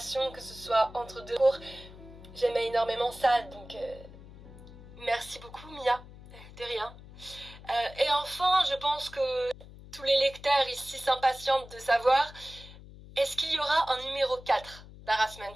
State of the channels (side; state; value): left; noise; hum, 18 dB below the sound